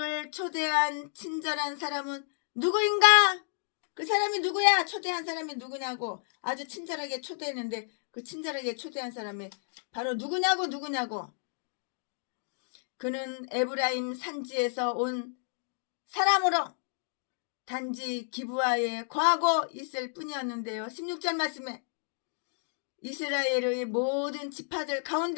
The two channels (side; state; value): right; silent; digital silence